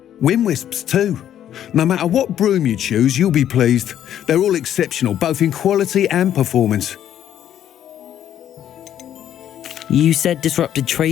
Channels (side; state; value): right; quieter; 10.7 dB